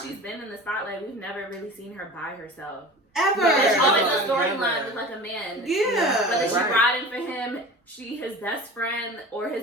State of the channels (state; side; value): normal; both; correlation 0.37